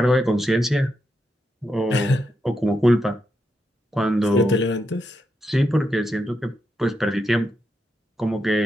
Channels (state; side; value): normal; both; correlation 0.83